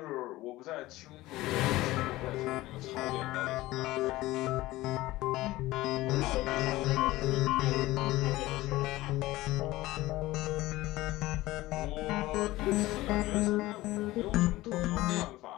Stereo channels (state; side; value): quieter; right; 17.9 dB